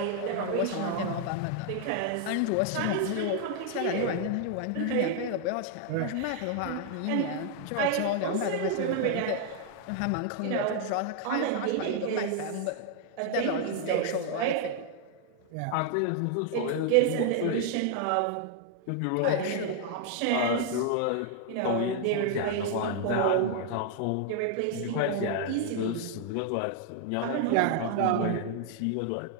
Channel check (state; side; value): different; both; correlation 0.00